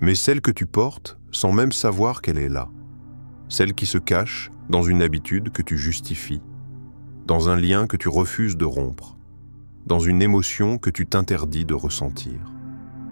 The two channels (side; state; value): both; inverted; correlation -1.00